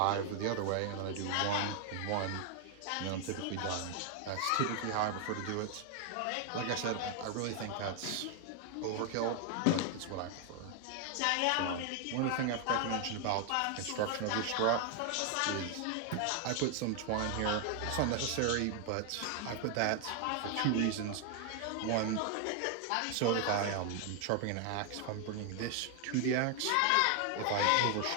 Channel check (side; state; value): both; different; correlation 0.00